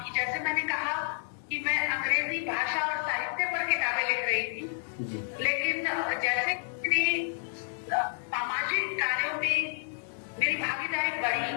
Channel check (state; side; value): silent; right; 57 dB below the other